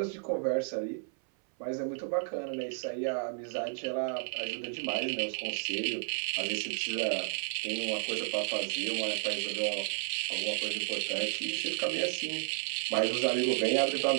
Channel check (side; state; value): left; silent; 56 dB below the other